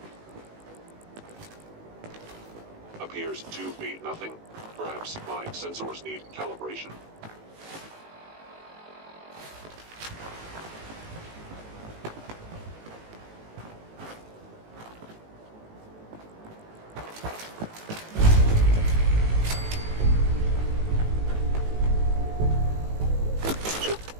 Appears to be nothing. Perhaps my sensors need calibration.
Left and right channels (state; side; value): late; left; 18 ms